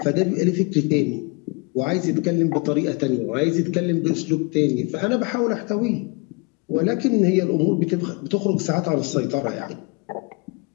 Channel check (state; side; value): quieter; right; 30.3 dB